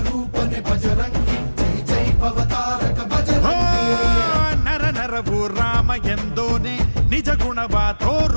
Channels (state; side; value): inverted; both; correlation -1.00